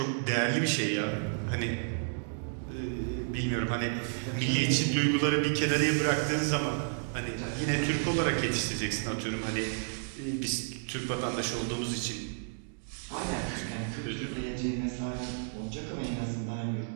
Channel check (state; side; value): silent; left; digital silence